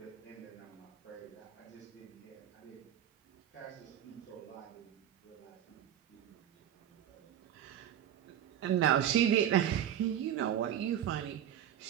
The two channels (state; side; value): quieter; left; 10.4 dB